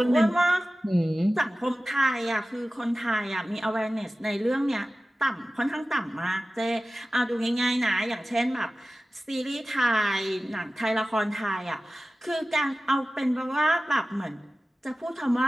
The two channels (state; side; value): normal; both; correlation 0.96